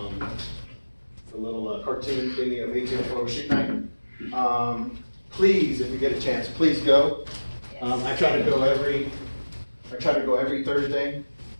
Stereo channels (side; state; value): both; inverted; correlation -1.00